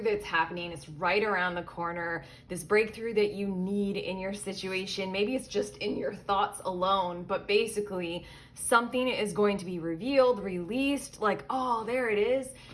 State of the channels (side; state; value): both; identical; correlation 1.00